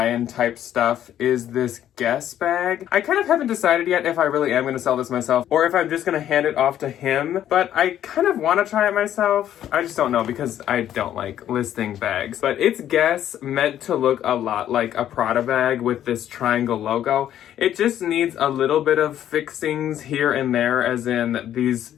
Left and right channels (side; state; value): right; quieter; 11.1 dB